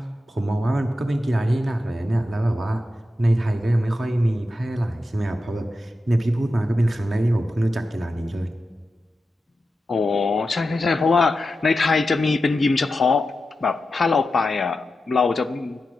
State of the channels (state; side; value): normal; both; correlation 0.91